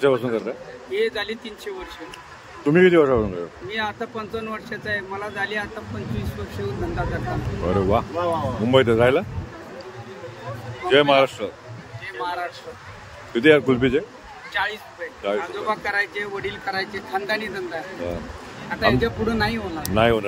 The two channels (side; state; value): both; identical; correlation 1.00